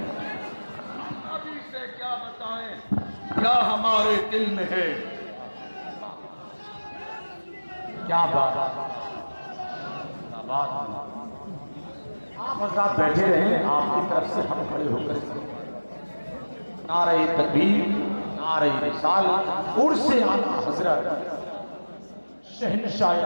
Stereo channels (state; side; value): inverted; both; correlation -1.00